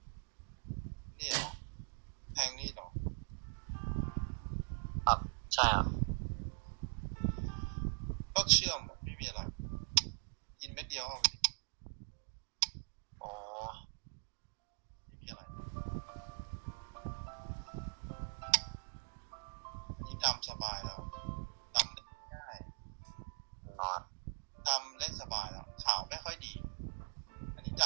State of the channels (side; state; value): left; silent; 50 dB below the other